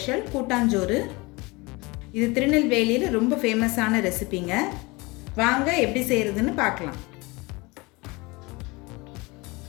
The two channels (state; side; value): quieter; right; 24.9 dB